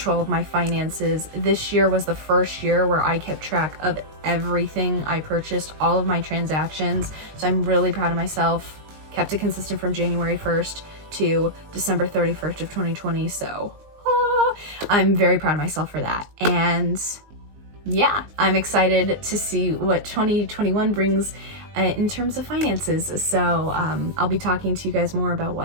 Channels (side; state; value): left; late; 19 ms